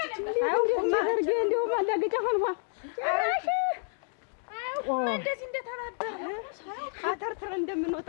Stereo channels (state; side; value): silent; right; 58 dB below the other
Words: እንደዚህ እንደተባበረ አተርትረ እንደምንወጣ